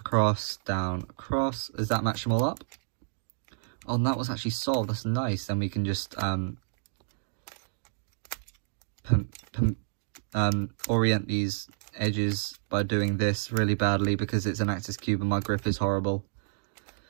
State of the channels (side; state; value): left; silent; digital silence